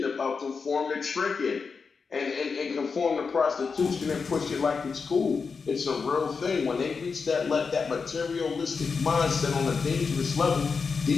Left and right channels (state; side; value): quieter; right; 5.1 dB